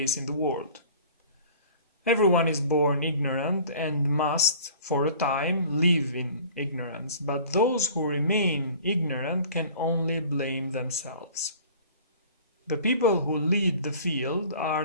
in the world. Everyone is born ignorant and must, for a time, live in ignorance, but those who remain ignorant can only blame themselves. The people who lead the field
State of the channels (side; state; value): both; inverted; correlation -0.46